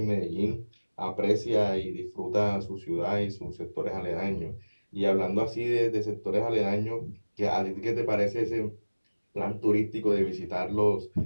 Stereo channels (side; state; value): both; inverted; correlation -1.00